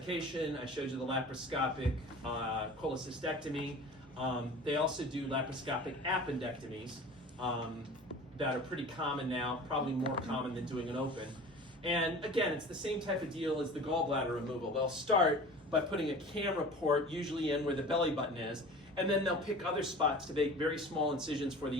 I showed you the laparoscopic cholecystectomy. They also do laparoscopic appendectomies that are pretty common now, probably more common than doing an open. And again, it's the same type of deal as the gallbladder removal. They'll start by putting a camera port usually in where the belly button is, and then they'll pick other spots to make very small incisions for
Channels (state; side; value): normal; both; correlation 0.40